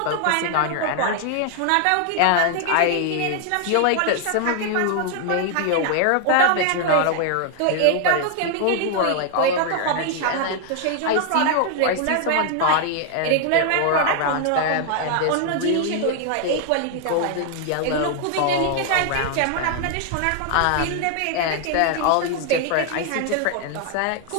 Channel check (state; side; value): different; both; correlation 0.00